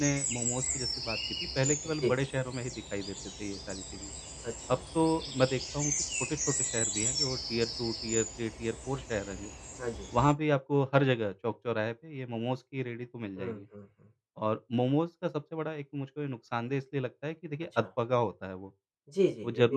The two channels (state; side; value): identical; both; correlation 1.00